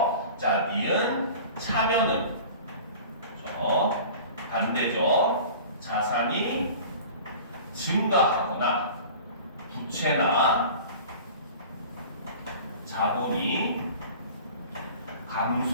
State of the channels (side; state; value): both; inverted; correlation -0.41